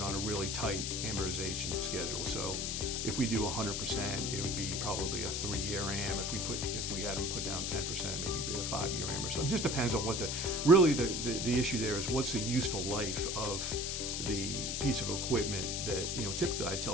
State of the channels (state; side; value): noise; left; hiss, 2 dB below the sound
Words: on a really tight amortization schedule. So if we do 100%, it would be probably a 3-year am. If we had them put down 10%, maybe be a 5-year am or something. It just depends on what the issue there is. What's the useful life of the piece of equipment that, you know, typically I